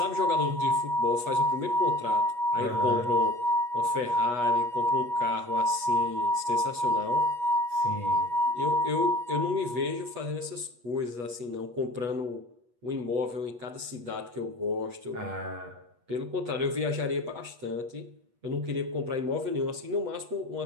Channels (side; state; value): left; late; 8.3 ms